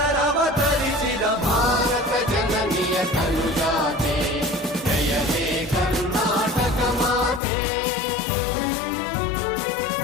ಭಾರತ ಜನನಿಯ ತನುಜಾತೆ ಜಯ ಹೇ ಕರ್ನಾಟಕ ಮಾತೆ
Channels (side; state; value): right; drops out; at 7.4 s